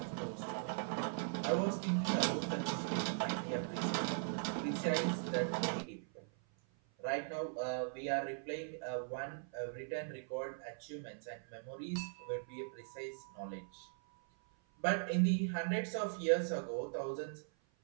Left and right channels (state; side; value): silent; left; 51 dB below the other